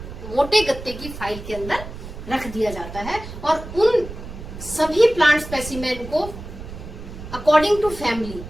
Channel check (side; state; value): right; noise; rumble, 12 dB below the sound